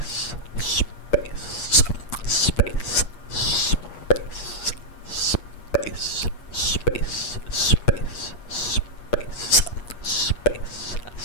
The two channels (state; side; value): late; right; 8.4 ms